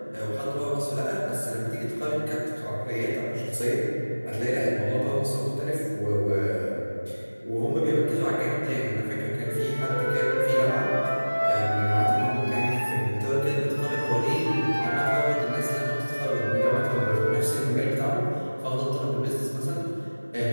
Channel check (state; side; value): inverted; both; correlation -1.00